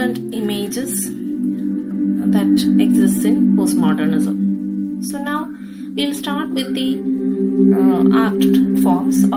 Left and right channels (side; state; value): both; identical; correlation 1.00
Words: images that exists in postmodernism. So now we'll start with the art forms